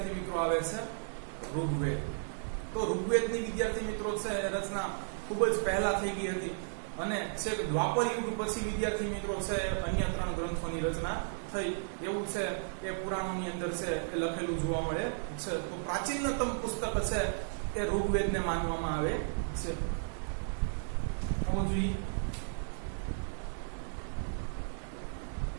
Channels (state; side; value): silent; left; 55 dB below the other